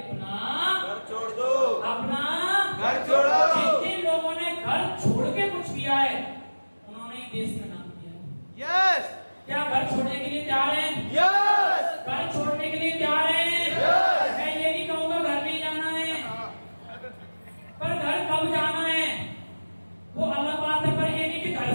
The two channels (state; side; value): inverted; both; correlation -1.00